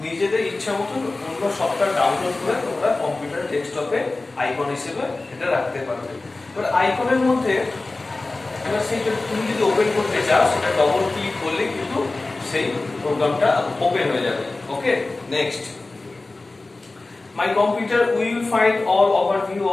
নিজেদের ইচ্ছা মতো অন্য সফটওয়্যার ডাউনলোড করে তোমরা কম্পিউটার ডেস্কটপে আইকন হিসেবে এটা রাখতে পারবে। এবার আইকনের মধ্যে এবার সেইটা তুমি যদি ওপেন করতে চাও সেটা ডবল ক্লিক করলে কিন্তু সেই প্রোগ্রামটা ওপেন হয়ে যাবে। ওকে, next, my computer will find all overview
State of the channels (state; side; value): quieter; right; 3.2 dB